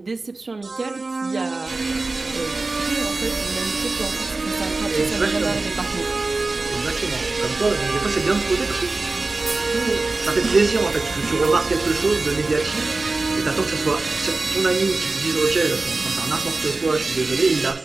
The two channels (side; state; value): left; quieter; 3.4 dB